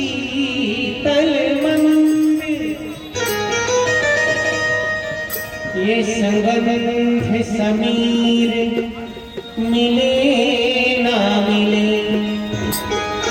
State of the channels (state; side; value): identical; both; correlation 1.00